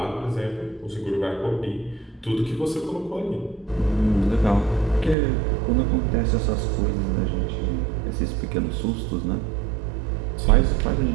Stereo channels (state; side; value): drops out; left; at 5.2 s